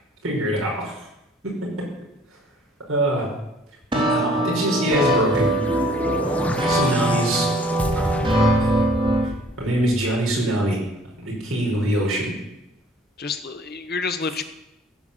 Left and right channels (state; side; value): normal; both; correlation 0.55